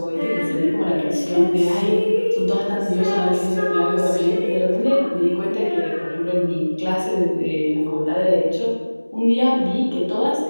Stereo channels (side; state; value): both; inverted; correlation -1.00